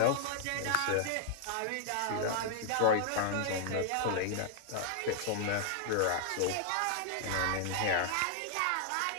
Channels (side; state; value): both; different; correlation 0.00